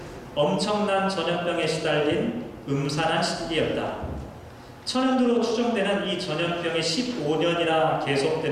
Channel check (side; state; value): both; identical; correlation 1.00